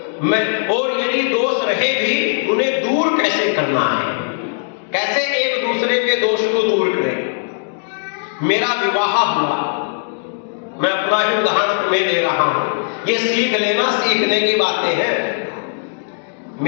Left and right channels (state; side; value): silent; right; digital silence